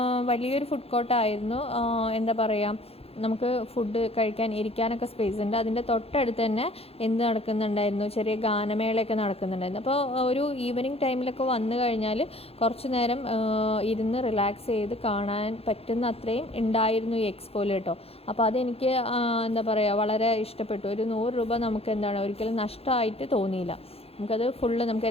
വലിയൊരു ഫുഡ് കോർട്ടായിരുന്നു. എന്താ പറയുക, നമുക്ക് ഫുഡ് കഴിക്കാൻ ഇരിക്കാനൊക്കെ സ്പേസ് ഉണ്ട്. അതിൻ്റെ തൊട്ടടുത്ത് തന്നെ എന്ത് നടക്കുന്നുണ്ടായിരുന്നു, ചെറിയ ഗാനമേളയൊക്കെ നടക്കുന്നുണ്ടായിരുന്നു. അപ്പോൾ ഒരു ഈവനിങ് ടൈമിലൊക്കെ വന്നു കഴിഞ്ഞാൽ കുറച്ച് നേരം ഇരുന്ന് റിലാക്സ് ചെയ്ത് കാണാൻ പറ്റുന്ന അത്രയും ഉണ്ടായിരുന്നു ഈ എക്സ്പോയിൽ കേട്ടോ. അപ്പോൾ അതെനിക്ക് എന്താ പറയുക വളരെ ഇഷ്ടപ്പെട്ടു. ഒരു 100 രൂപ നമുക്ക് എന്താണ് ഒരിക്കലും നഷ്ടമായിട്ട് തോന്നിയില്ല. നമുക്കത് ഫുള്ള് നമുക്ക്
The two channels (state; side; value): late; right; 0.29 ms